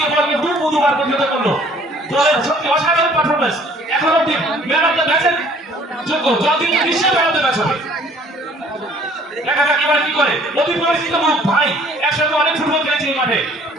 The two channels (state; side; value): normal; both; correlation 0.56